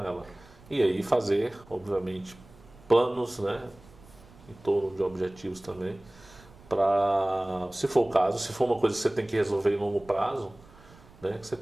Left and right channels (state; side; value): noise; right; rumble, 24 dB below the sound